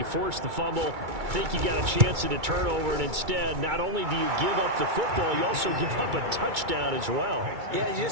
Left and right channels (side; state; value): left; late; 2.3 ms